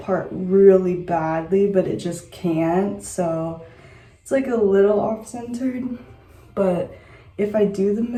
really badly, but it just can't. So it's like a little off-centered, but if I do the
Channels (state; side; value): identical; both; correlation 1.00